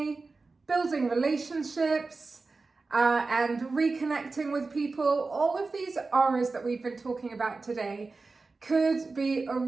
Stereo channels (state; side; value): quieter; left; 3.9 dB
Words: building relationships, and reconnecting with people, all of these R's that we've been talking about today could be a